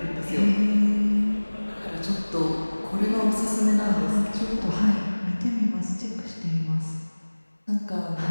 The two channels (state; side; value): inverted; both; correlation -1.00